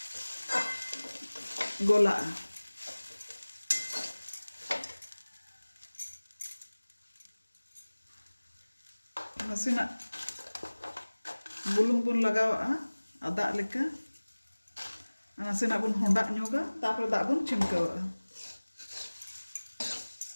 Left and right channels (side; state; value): both; inverted; correlation -1.00